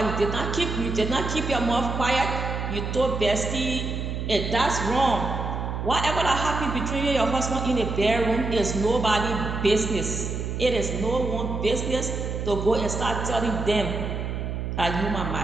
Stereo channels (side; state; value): right; noise; hum, 3 dB below the sound